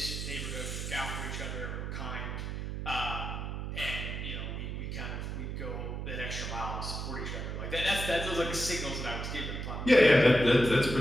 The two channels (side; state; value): right; noise; hum, 5 dB below the sound